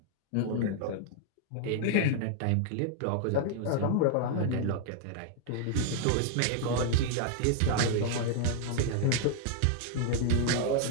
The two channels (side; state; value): both; different; correlation -0.01